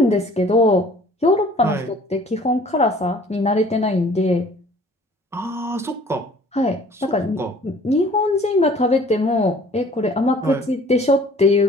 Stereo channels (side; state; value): both; normal; correlation 0.52